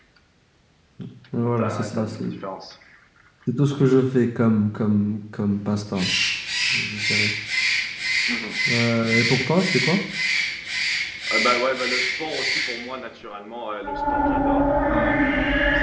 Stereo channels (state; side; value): identical; both; correlation 1.00